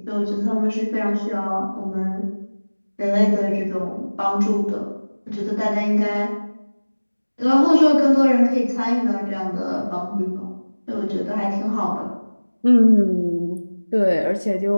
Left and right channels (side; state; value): both; inverted; correlation -1.00